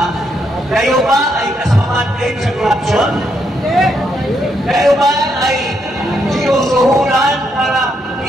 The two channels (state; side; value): normal; both; correlation 0.77